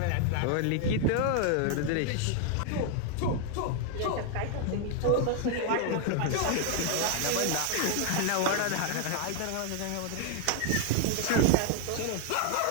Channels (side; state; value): both; different; correlation 0.00